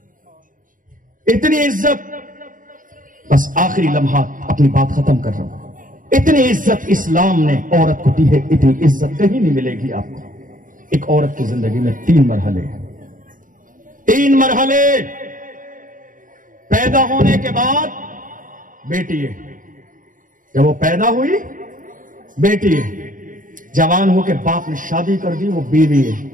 اتنی عزت، بس آخری لمحات اپنی بات ختم کر رہا ہوں، اتنی عزت اسلام نے عورت کو دی ہے، اتنی عزت کہیں نہیں ملے گی آپ کو۔ ایک عورت کی زندگی میں 3 مرحلے ہیں، 3 مرحلے۔ پیدا ہونے کے بعد بیٹی ہے، جب وہ پیدا ہوئی بیٹی ہے، جوان ہو کے باپ نے شادی کر دی وہ بیوی ہے،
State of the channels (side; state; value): left; late; 0.39 ms